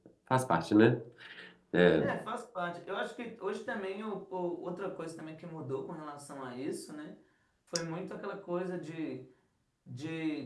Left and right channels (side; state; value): both; identical; correlation 1.00